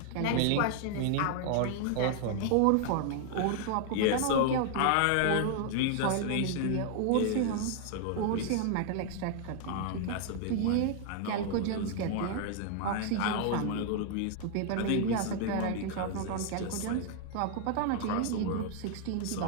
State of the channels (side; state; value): both; different; correlation 0.00